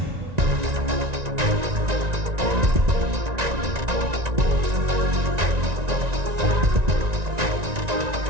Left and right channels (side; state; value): left; late; 1.9 ms